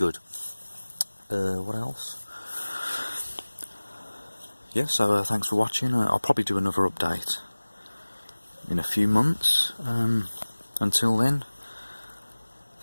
What else? Yeah, so thanks for watching. I'll probably do another update in a few months. Until then,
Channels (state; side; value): inverted; both; correlation -1.00